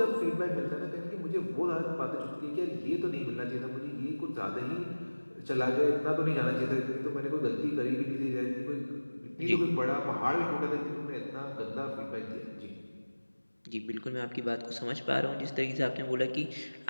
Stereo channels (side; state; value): both; inverted; correlation -1.00